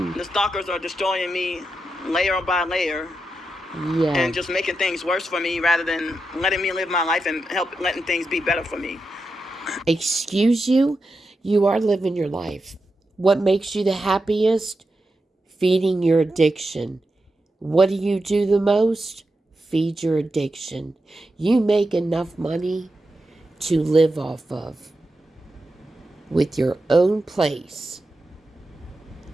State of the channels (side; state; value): both; normal; correlation 0.88